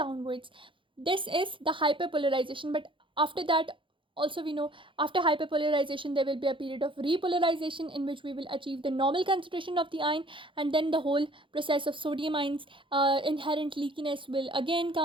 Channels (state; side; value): late; left; 0.25 ms